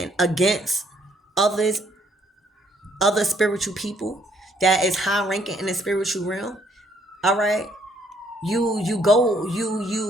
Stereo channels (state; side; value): normal; both; correlation 0.67